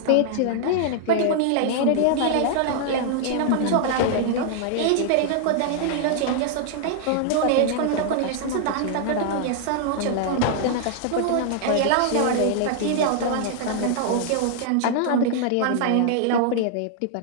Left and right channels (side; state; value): both; different; correlation -0.01